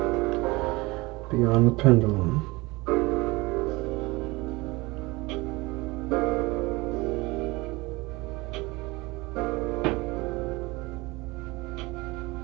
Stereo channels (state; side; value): quieter; left; 22.9 dB